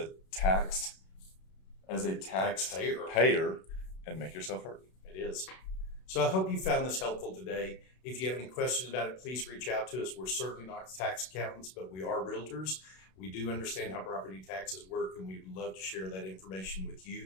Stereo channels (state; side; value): late; right; 32 ms